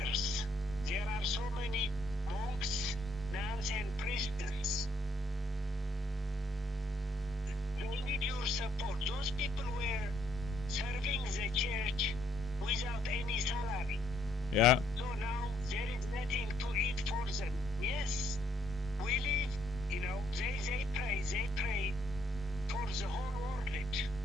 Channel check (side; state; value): both; normal; correlation 0.70